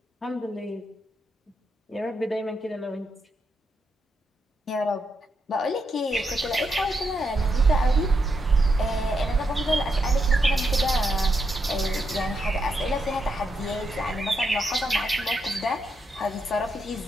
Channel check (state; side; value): normal; both; correlation 0.82